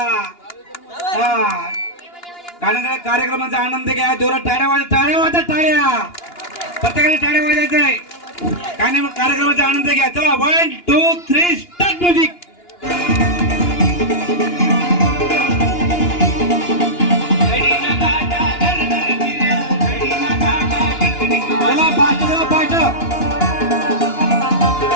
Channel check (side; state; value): right; late; 2.9 ms